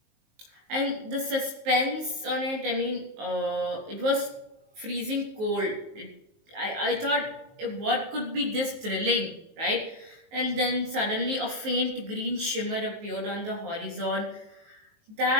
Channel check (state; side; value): late; left; 19 ms